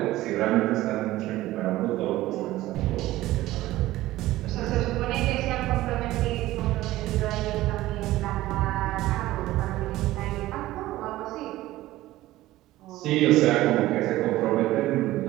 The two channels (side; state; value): left; quieter; 16.4 dB